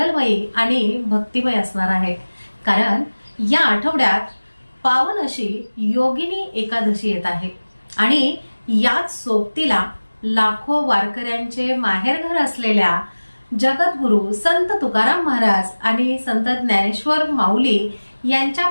आणि भक्तिमय असणार आहे, कारण या आठवड्यात पावन अशी योगिनी एकादशी येत आहे आणि याच सोबतीला लाखो वारकऱ्यांचे माहेरघर असलेल्या जगद्गुरु संत तुकाराम महाराज आणि संत ज्ञानेश्वर माऊली यांच्या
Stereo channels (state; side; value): inverted; both; correlation -1.00